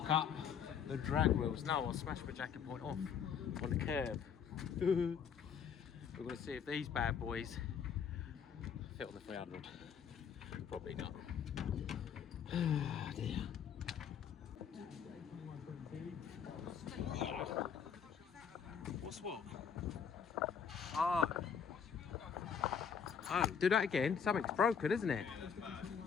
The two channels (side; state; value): right; quieter; 7.3 dB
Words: up the drag wheels. No, I'll smash my jacket point off on the curb. We're going to see if these bad boys fit on the 300. Probably not. Oh dear. What's what? Oh. Oh, do that again. Something's broken, isn't it?